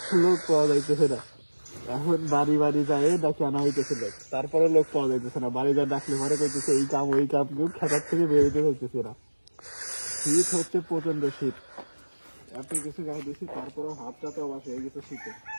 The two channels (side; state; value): both; inverted; correlation -1.00